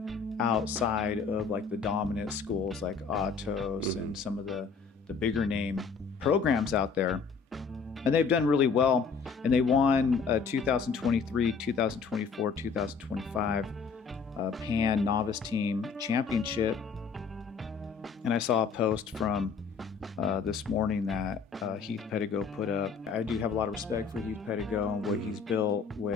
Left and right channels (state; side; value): quieter; right; 5.4 dB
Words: outside of like the dominant schools like Atos and some of the bigger name programs out there. And they've done really well, and they won 2023, 2024, 2025 Pan Novice Team Championship. And I saw a post from this morning that Heath Pedigo put up. I do have a lot of respect for Heath Pedigo and what he's built